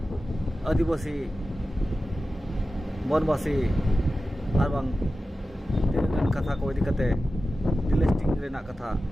आदिवासी बनवासी आर बांग तिनगन कथा को इदी कते डिलेस्टिंग रेना कथा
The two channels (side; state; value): both; normal; correlation 0.94